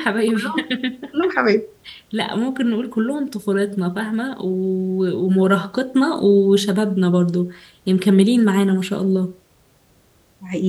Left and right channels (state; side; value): identical; both; correlation 1.00